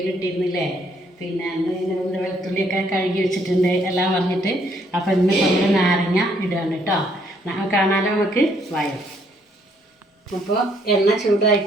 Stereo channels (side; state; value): both; normal; correlation 0.68